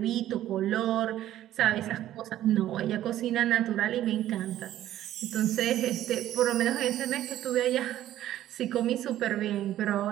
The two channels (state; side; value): quieter; left; 13.0 dB